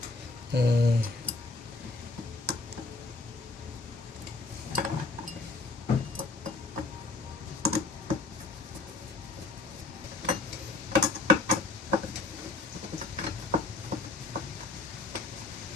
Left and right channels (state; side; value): quieter; right; 3.4 dB